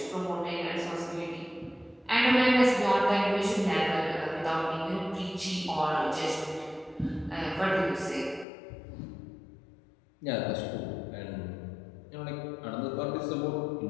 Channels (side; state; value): right; drops out; at 8.5 s